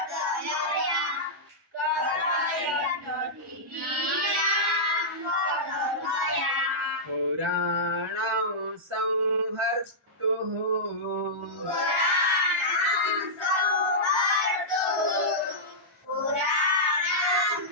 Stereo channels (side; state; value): both; normal; correlation -0.12